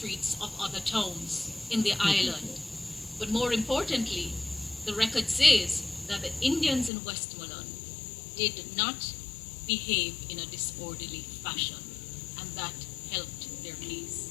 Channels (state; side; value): drops out; right; at 6.9 s